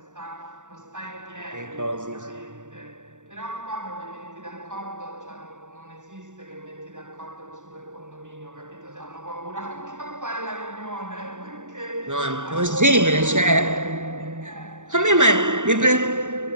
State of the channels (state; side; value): late; left; 0.86 ms